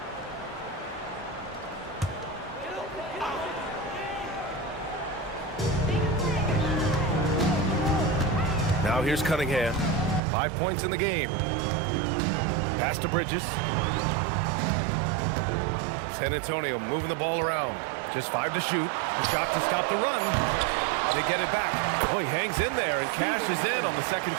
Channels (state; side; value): drops out; left; at 10.2 s